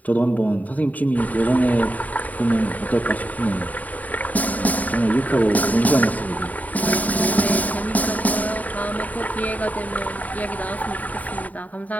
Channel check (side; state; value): right; late; 0.073 ms